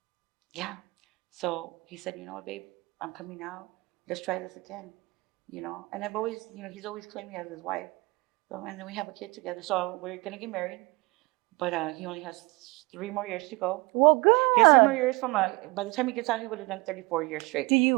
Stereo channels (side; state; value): left; quieter; 25.2 dB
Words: so he said, you know what, babe, I'm coming out. Let's try this again. And I've always, he's always claimed me as his wife. So, and then we have a kid together. So we're going to get married. But he only has 3 more years to go. Well, good. He has 3 more years by the time he gets out, he would have done 34 years straight. Do